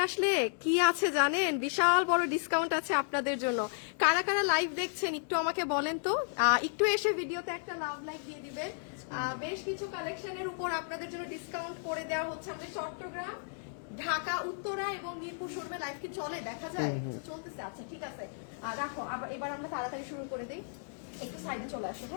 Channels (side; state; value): right; silent; digital silence